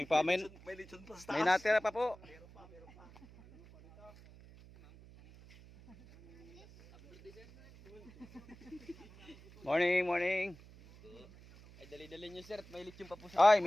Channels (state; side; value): noise; right; hum, 21 dB below the sound